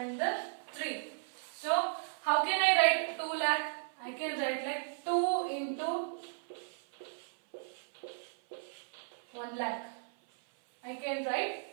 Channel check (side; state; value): left; silent; 54 dB below the other